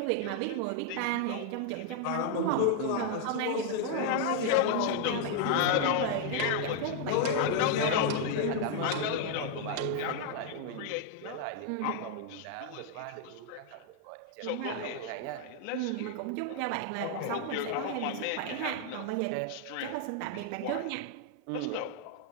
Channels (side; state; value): both; different; correlation 0.00